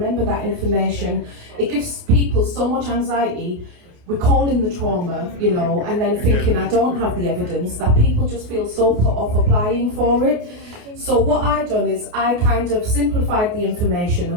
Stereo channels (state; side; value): late; left; 28 ms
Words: that information? It gives people so much anxiety, recalling the trauma, and then thinking, I don't have the evidence, that people just feel so put off applying for it. So what I done is I kind of simplified the information